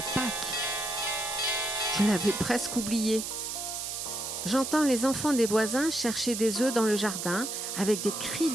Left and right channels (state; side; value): noise; right; hiss, 5 dB below the sound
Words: Pâques. Je l'avais presque oublié. J'entends les enfants des voisins chercher des œufs dans le jardin avec des cris